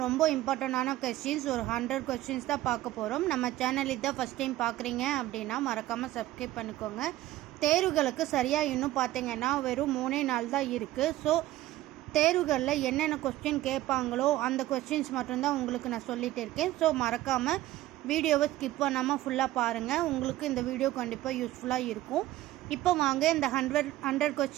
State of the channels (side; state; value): left; quieter; 15.5 dB